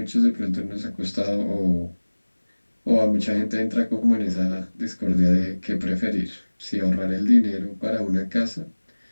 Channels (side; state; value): both; inverted; correlation -1.00